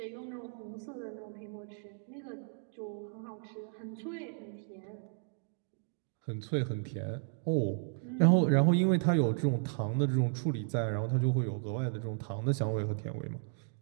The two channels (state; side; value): silent; left; digital silence